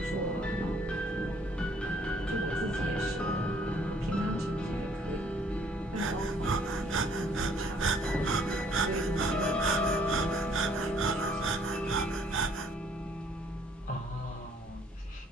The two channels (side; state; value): both; normal; correlation 0.62